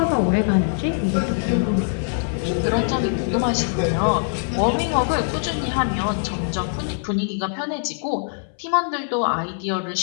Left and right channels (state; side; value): silent; right; 63 dB below the other